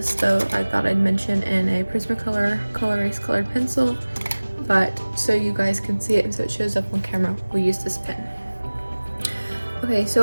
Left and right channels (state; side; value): inverted; both; correlation -1.00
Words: though, I thought I'd mention, in a Prismacolor Color Erase colored pencil, but so you guys can see it and so it shows up on camera, we'll use this pen. Okay, so